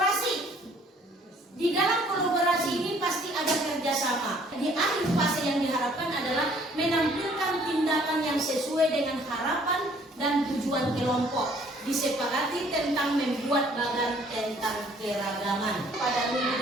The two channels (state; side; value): normal; both; correlation 0.59